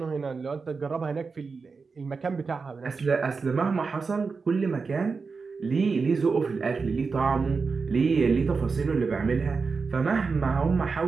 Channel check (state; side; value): quieter; left; 4.8 dB